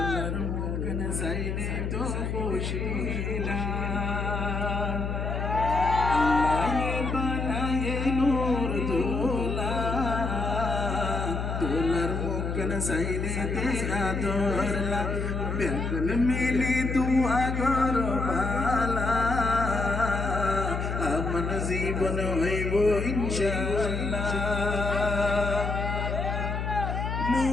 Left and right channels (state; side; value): noise; left; hum, 2 dB below the sound